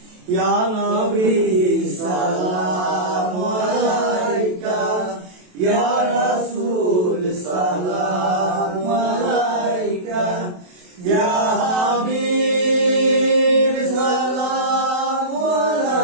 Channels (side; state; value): left; late; 27 ms